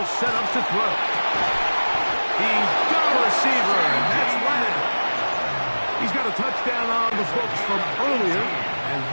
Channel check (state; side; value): inverted; both; correlation -1.00